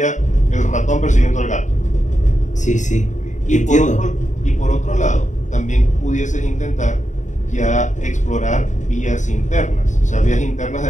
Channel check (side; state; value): right; late; 0.35 ms